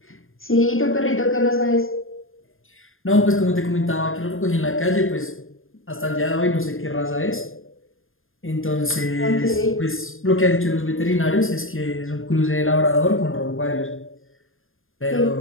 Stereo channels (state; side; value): late; right; 0.60 ms